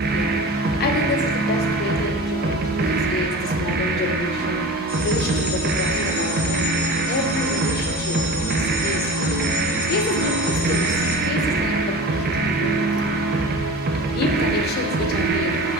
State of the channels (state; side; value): normal; both; correlation 0.35